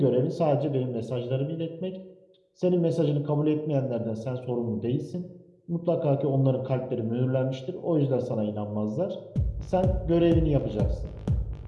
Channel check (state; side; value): identical; both; correlation 1.00